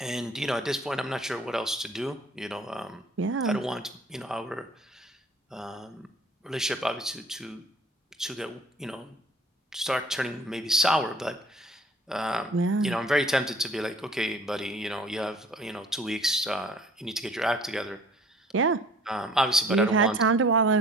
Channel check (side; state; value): both; normal; correlation 0.52